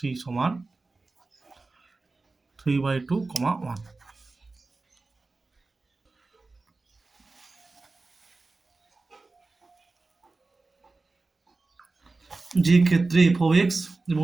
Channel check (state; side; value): quieter; left; 3.6 dB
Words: সমান 3/2, 1। যে ক্ষেত্রে এফ অফ এক্স